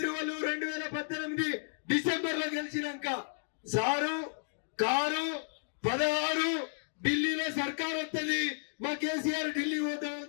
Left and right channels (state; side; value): silent; right; digital silence